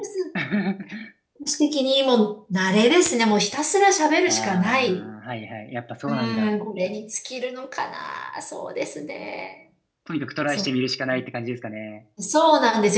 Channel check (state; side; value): identical; both; correlation 1.00